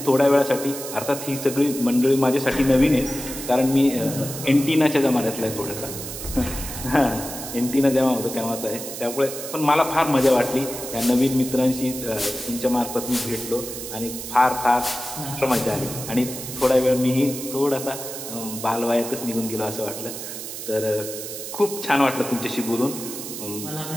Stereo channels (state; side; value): noise; right; hiss, 9 dB below the sound